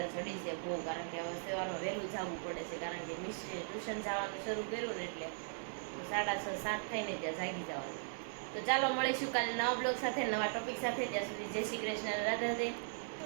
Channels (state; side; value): silent; left; digital silence